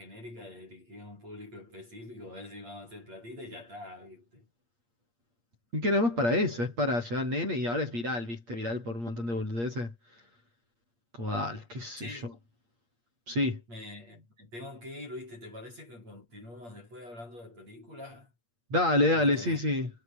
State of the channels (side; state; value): left; late; 8.6 ms